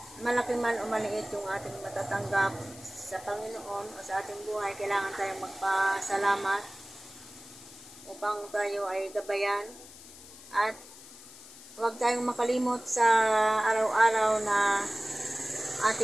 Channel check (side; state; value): left; noise; hiss, 18 dB below the sound